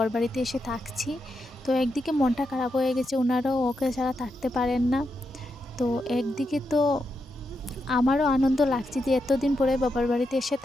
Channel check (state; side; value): normal; both; correlation 0.85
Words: বাড়িতে এসে থাকছি। তো একদিকে মনটা খারাপ হয়ে গেছে, ওনারাও ওকে ছাড়া থাকতে পারেন না। তো একদিকে তো আমারও আনন্দ লাগছে যে এতদিন পরে বাবার বাড়িতে এসে